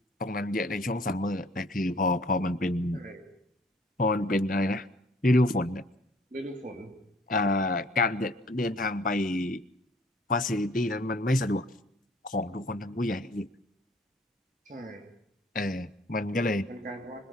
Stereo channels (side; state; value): both; normal; correlation 0.57